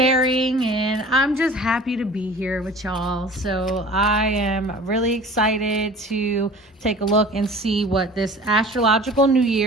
And I'm just happy to be here with y'all. So I am really excited to take a look and see what this astrological new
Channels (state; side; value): normal; both; correlation 0.43